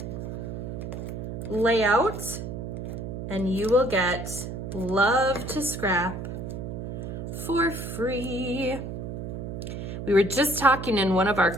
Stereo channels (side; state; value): right; noise; hum, 6 dB below the sound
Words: layout and you will get Love to Scrap for free. We were just talking in one of our